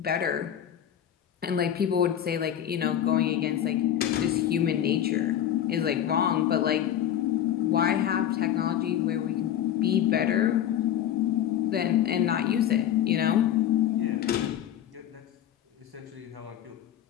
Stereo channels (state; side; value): quieter; right; 10.6 dB